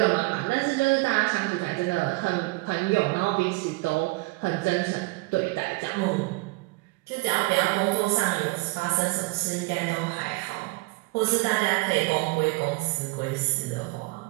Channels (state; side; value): quieter; left; 24.5 dB